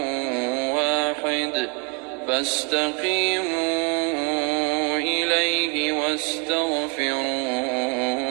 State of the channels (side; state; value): left; quieter; 34.4 dB